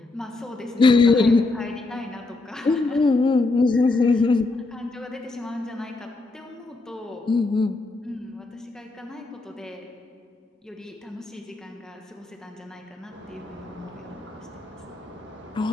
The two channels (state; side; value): quieter; right; 3.3 dB